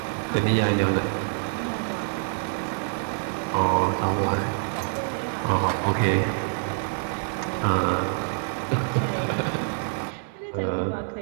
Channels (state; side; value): silent; left; 60 dB below the other